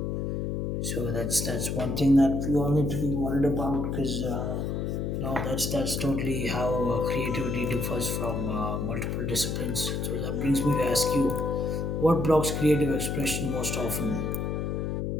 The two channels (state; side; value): noise; left; hum, 1 dB below the sound